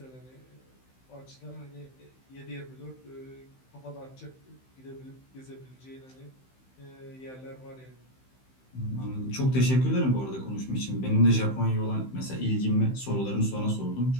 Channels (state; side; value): late; right; 15 ms